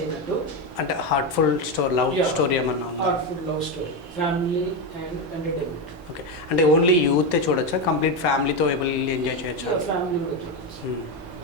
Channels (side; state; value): both; normal; correlation 0.12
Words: అయినట్టు. అంటే హార్ట్ఫుల్ లవ్ స్టోరీ ఏమన్నా ఉందా? Heartful love story, family and entertainment. Okay. అంటే ఓన్లీ యూతే చూడొచ్చా? కంప్లీట్ ఫ్యామిలీతో వెళ్ళి ఎంజాయ్ చేయొచ్చా? ఫ్యామిలీ కూడా చూడొచ్చు.